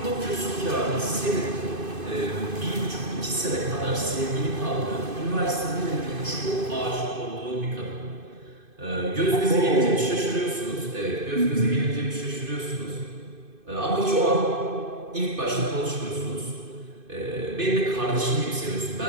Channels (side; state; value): left; late; 2.5 ms